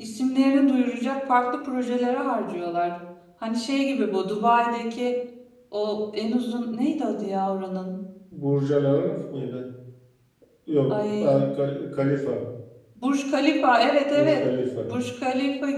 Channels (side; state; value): both; identical; correlation 1.00